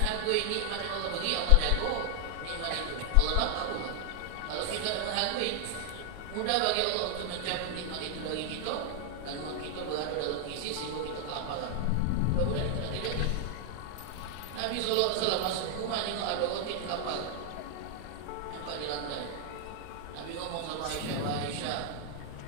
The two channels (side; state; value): both; different; correlation 0.00